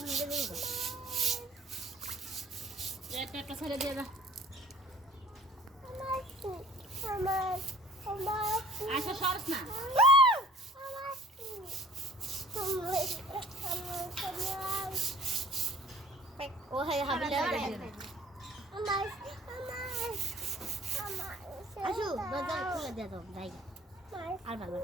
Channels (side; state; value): both; normal; correlation 0.51